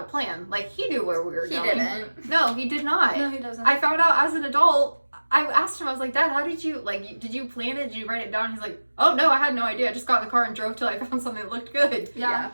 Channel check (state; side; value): inverted; both; correlation -1.00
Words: a plan. Like he knew where we were He going. didn't. No, he did not. No, he doesn't. I found out as an adult. I asked him, I was like, "Dad, how did you, like, did you plan it? Did you write it down?" He's like, "Oh, no, I had no idea. I just got in the car and drove till I found something that looked good." Yeah.